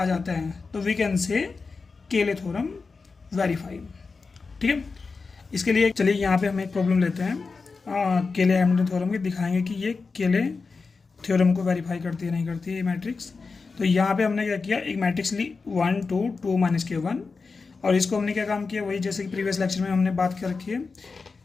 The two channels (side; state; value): right; quieter; 4.4 dB